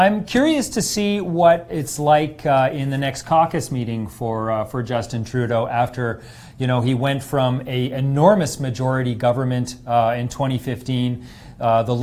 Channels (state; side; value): identical; both; correlation 1.00